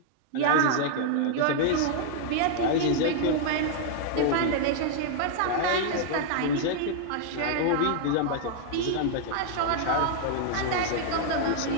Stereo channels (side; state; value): both; different; correlation -0.01